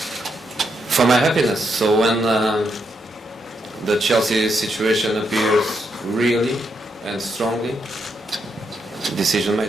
happiness. So when the Chelsea situation appears really and strongly, decision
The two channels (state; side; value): normal; both; correlation 0.80